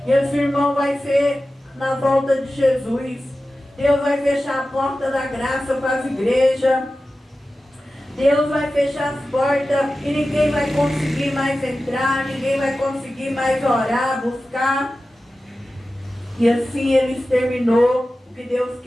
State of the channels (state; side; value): normal; both; correlation 0.94